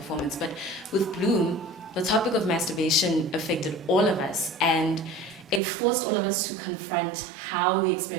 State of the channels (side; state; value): left; drops out; at 5.6 s